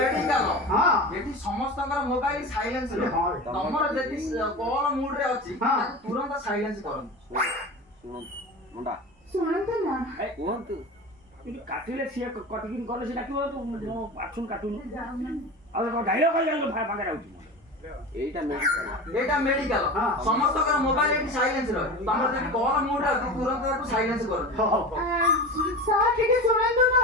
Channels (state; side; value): normal; both; correlation 0.29